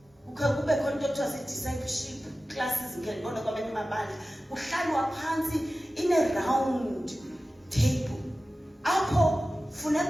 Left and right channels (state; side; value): normal; both; correlation 0.95